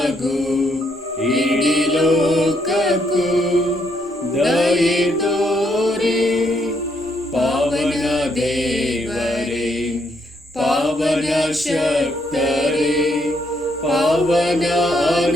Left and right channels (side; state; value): both; normal; correlation 0.74